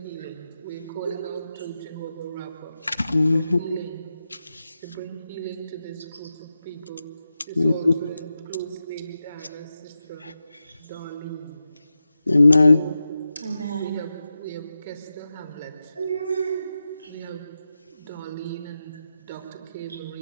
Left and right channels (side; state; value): both; inverted; correlation -0.90